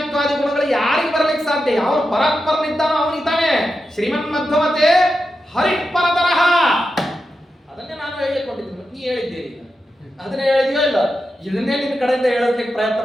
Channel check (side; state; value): both; normal; correlation 0.89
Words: ಗುಣಗಳು ಯಾರಿಗೆ ಬರಲಿಕ್ಕೆ ಸಾಧ್ಯ? ಯಾವ ಪರಾತ್ಪರನಿದ್ದಾನೋ ಅವನಿದ್ದಾನೆ. ಶ್ರೀಮನ್ ಮಧ್ವಮತೆ ಹರಿಪರತರಃ ಅದನ್ನೇ ನಾನು ಹೇಳಿಕೊಂಡಿದ್ದೀನಿ, ನೀ ಹೇಳಿದ್ದೇನೆ ಅದನ್ನೇ ಹೇಳಿದ್ಯೋ ಇಲ್ಲ, ಇದನ್ನೇ ನಿನ್ನ ಕಡೆಯಿಂದ ಹೇಳೋದಕ್ಕೆ ಪ್ರಯತ್ನ